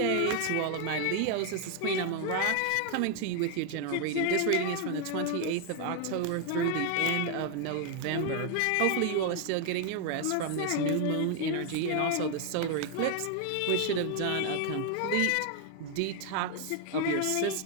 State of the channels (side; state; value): both; different; correlation 0.01